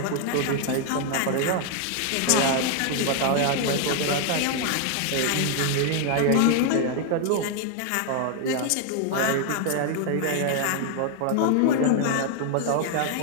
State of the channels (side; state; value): both; different; correlation 0.00